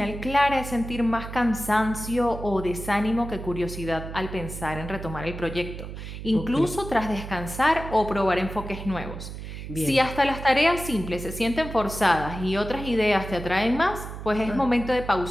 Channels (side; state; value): right; noise; hum, 9 dB below the sound